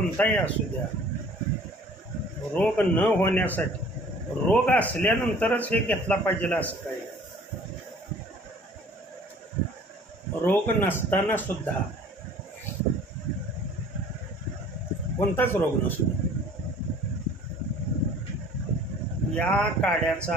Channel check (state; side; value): normal; both; correlation 0.51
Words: असू द्या, रोग न होण्यासाठी रोग असल्यानंतरच हे घेतला पाहिजे असं काही. रोग नसताना सुद्धा कोणताच रोग नसू द्या, या